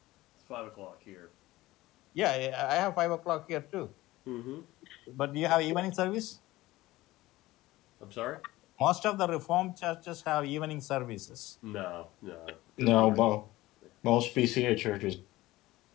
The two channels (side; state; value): right; quieter; 17.9 dB